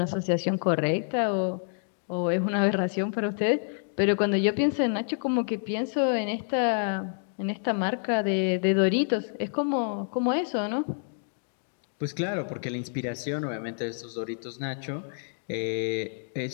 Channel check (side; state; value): right; silent; digital silence